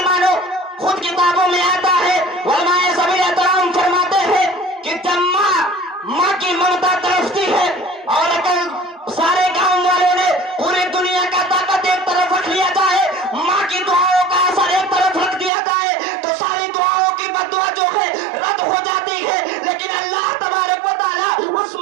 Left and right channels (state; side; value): drops out; left; at 15.5 s